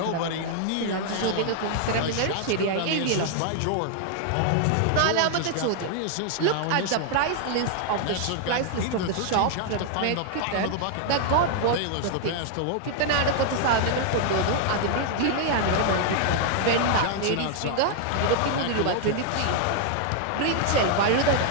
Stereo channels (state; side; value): different; both; correlation 0.00